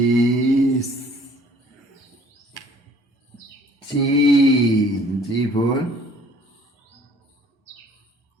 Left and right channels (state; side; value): normal; both; correlation 0.55